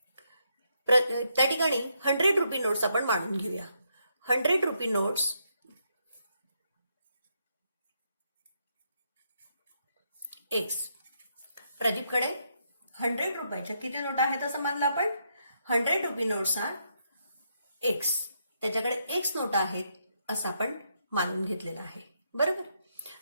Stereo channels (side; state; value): both; inverted; correlation -0.78